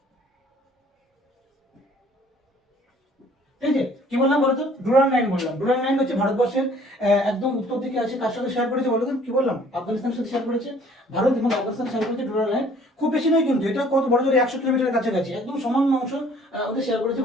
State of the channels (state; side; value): normal; both; correlation 0.56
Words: ঠিক আছে, কি বললাম বলো তো? ডুরান্ট লাইন বললাম। ডুরান্ট লাইন হচ্ছে ভারতবর্ষের একদম উত্তর দিকে আছে। কার সাথে শেয়ার করেছে বলো তো? কি বললাম? আফগানিস্তানের সাথে শেয়ার করেছে। ভারত এবং আফগানিস্তান শেয়ার করেছে ডুরান্ট লাইন। খুব বেশি নয় কিন্তু, এটা কত বড় জোরে 100 কিলোমিটারের কাছাকাছি, একদম সমান অংশ ওদের শেয়ার করেছে